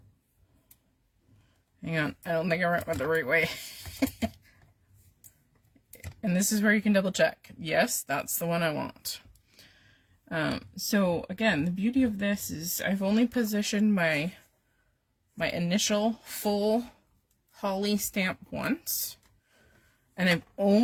on, I don't think I went the right way. And this is where you can double check. Yes, that's the one I want. So again, the beauty of this is I've only positioned my initial full holly stamp once, and I've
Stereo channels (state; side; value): identical; both; correlation 1.00